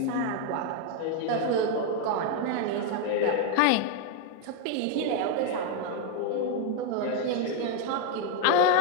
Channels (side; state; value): both; different; correlation 0.00